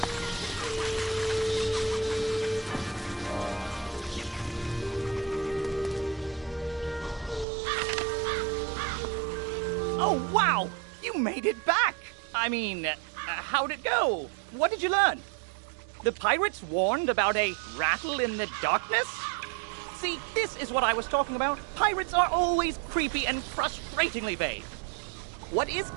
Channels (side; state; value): left; drops out; at 7.5 s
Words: Oh, wow! You made it back! I mean, how'd it go? What did you learn? The pirates warned about a rattle in the darkness? See, this is what I was talking about. Pirates are always creepy and frustratingly vague. What is